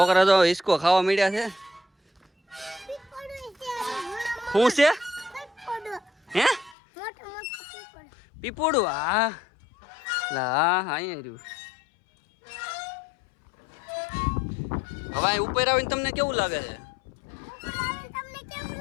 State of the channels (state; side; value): drops out; right; at 6.8 s